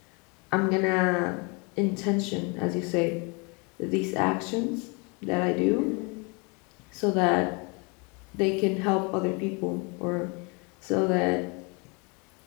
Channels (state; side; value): quieter; right; 31.4 dB